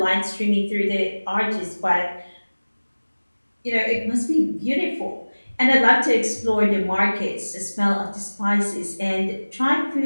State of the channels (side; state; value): both; inverted; correlation -1.00